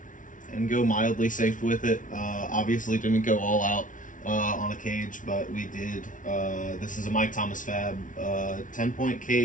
go mildly safe with it. Obviously didn't go all out on a cage, but we did. This is a Mike Thomas Fab 10-point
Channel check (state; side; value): late; right; 0.38 ms